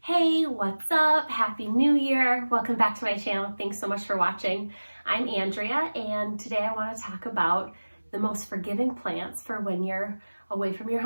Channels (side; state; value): both; inverted; correlation -1.00